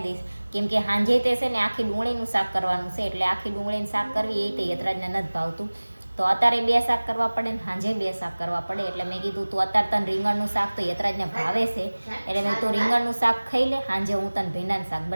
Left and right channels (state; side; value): inverted; both; correlation -1.00